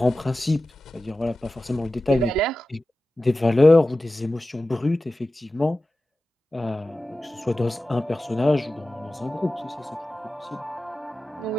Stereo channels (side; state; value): both; normal; correlation 0.94